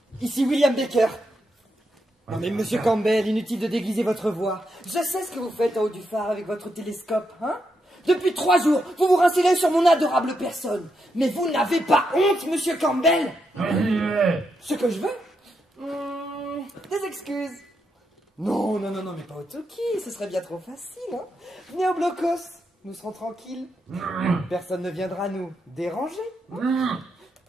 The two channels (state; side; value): normal; both; correlation 0.83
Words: Ici William Baker. Non mais monsieur Campbell, inutile de déguiser votre voix. Je sais ce que vous faites en haut du phare avec votre télescope, hein? Depuis 3 jours, vous vous rincez sur mon adorable personne. Mais vous n'avez pas honte, monsieur Campbell? Ce que je veux? Des excuses. Non, mais pas au Toki, ce serait bien trop facile, hein? Venez au blocos, nous serons tranquilles. Personne ne viendra nous déranger.